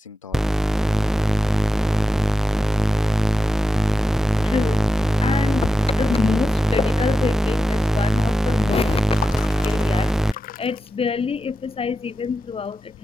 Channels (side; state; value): both; normal; correlation 0.91